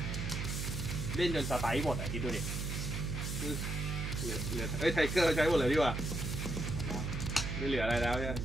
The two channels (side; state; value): right; noise; hum, 3 dB below the sound